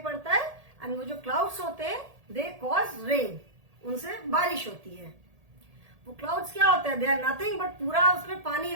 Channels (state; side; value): late; left; 1.8 ms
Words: पड़ता है। एंड वो जो क्लाउड्स होते हैं दे कॉज रेन, उनसे बारिश होती है। वो क्लाउड्स क्या होता है, दे आर नथिंग बट पूरा उसमें पानी